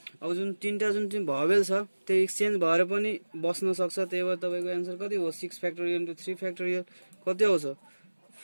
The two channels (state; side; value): inverted; both; correlation -1.00